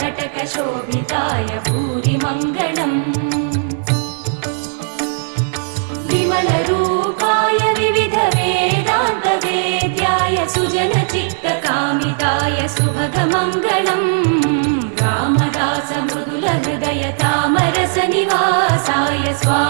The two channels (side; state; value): left; silent; 68 dB below the other